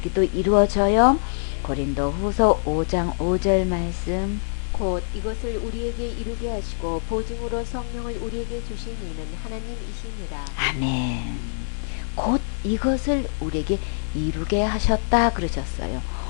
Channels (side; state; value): right; silent; 60 dB below the other